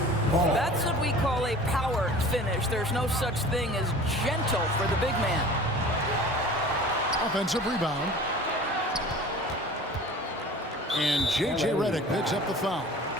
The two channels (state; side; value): normal; both; correlation 0.42